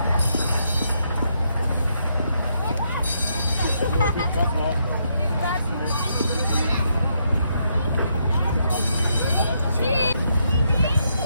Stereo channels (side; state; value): both; inverted; correlation -0.77